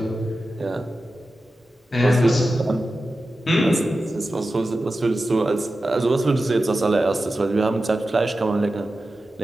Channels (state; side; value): normal; both; correlation 0.93